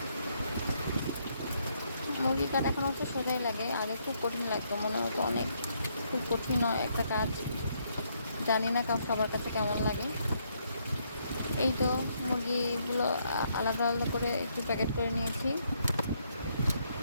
মুরগি কাটা এখন অবশ্য সোজাই লাগে, আগে খুব কঠিন লাগতো, মনে হতো অনেক খুব কঠিন একটা কাজ। জানি না সবার কাছে কেমন লাগে। এই তো মুরগিগুলো আলাদা আলাদা করে একটু প্যাকেট করে নিয়েছি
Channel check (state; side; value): inverted; both; correlation -0.73